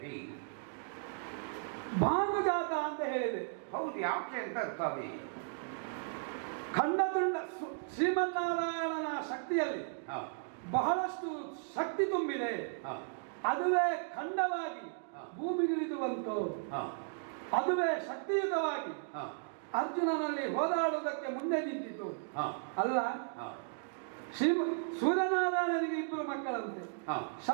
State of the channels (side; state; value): left; silent; digital silence